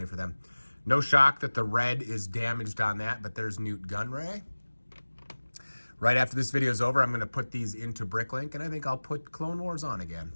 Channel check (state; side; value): inverted; both; correlation -1.00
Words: for them. No shock that the red is damaged on that, but there's Newt Gunray. Right after this video is over, I'm going to put these into Bricklink, and I think I'll put Clone Wars on again.